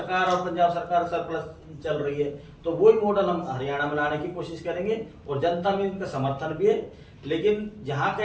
और पंजाब सरकार सरप्लस चल रही है, तो वही मॉडल हम हरियाणा में लाने की कोशिश करेंगे, और जनता में इनका समर्थन भी है। लेकिन जहां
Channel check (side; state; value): both; identical; correlation 1.00